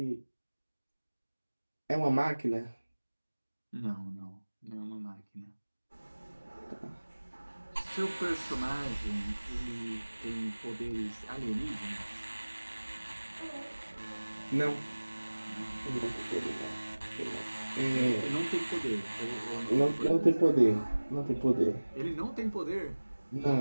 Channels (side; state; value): both; inverted; correlation -1.00